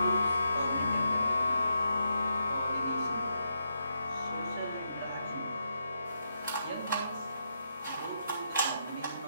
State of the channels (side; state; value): both; inverted; correlation -0.81